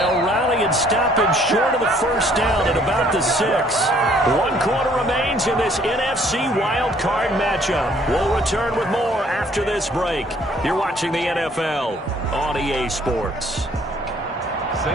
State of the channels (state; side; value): normal; both; correlation 0.61